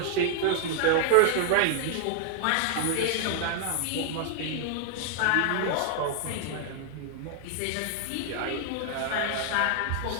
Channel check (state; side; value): different; both; correlation 0.00